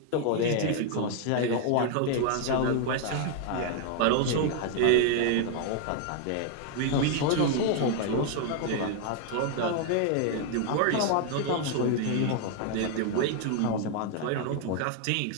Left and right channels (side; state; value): both; different; correlation 0.00